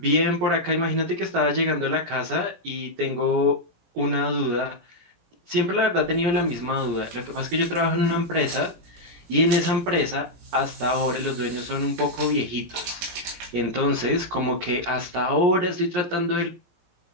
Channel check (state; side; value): late; left; 17 ms